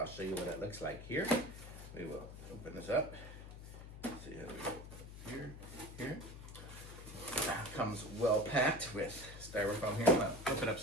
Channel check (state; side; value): noise; left; hum, 12 dB below the sound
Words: show you what it looks like here. We will open this up. Let's see how we go here. Comes well packed with styrofoam here. I'm going to flip it